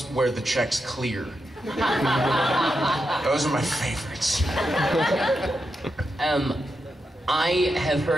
where the check's clear. Those are my favorites. I have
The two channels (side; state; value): both; normal; correlation 0.86